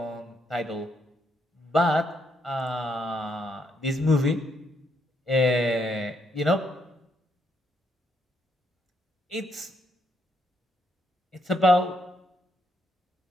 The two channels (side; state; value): both; normal; correlation 0.76